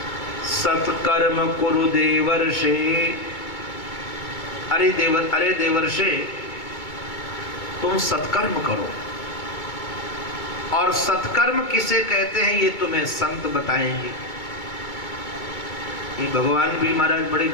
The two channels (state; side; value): late; right; 2.2 ms